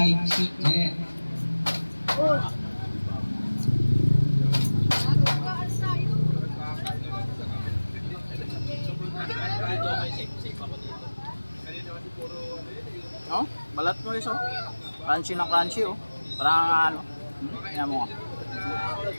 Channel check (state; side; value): inverted; both; correlation -1.00